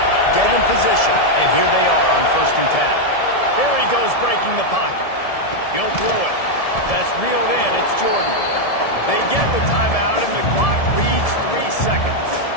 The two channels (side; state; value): right; late; 1.7 ms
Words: Get in position. And here they are on 1st and 10. Here he goes breaking the pocket. He'll throw it. That's reeled in. It's Jordan. They get the timeout, and the clock reads 3 seconds.